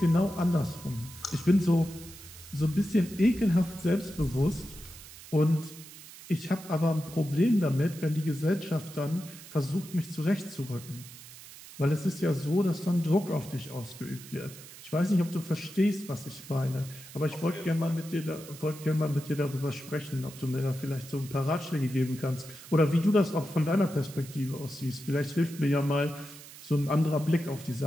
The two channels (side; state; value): right; noise; hiss, 17 dB below the sound